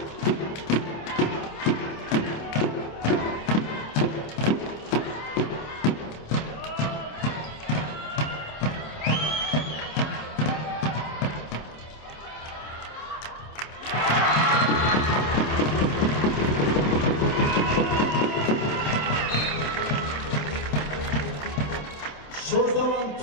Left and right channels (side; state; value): right; late; 27 ms